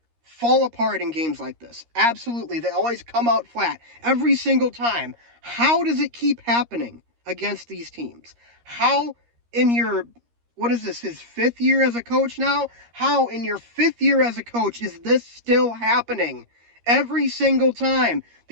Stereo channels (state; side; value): late; left; 13 ms